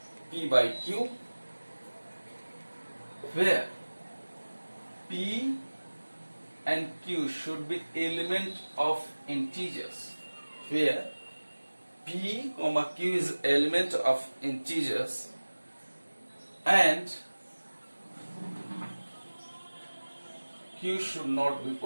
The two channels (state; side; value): inverted; both; correlation -1.00